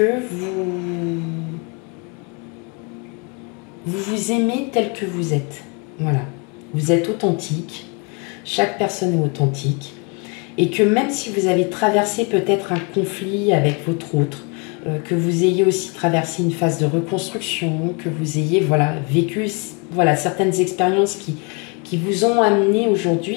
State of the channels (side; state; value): right; quieter; 32.2 dB